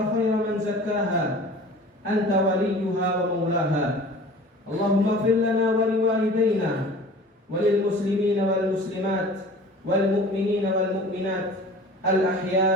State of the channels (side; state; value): both; normal; correlation 0.43